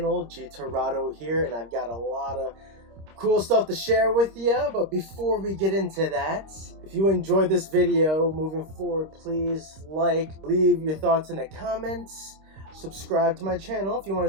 G Torado here, and I've got a lot of cool stuff to share with you. But before we get into that, if you enjoyed this video moving forward, please leave your thoughts in the comments, subscribe to my channel if you want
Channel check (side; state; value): left; late; 26 ms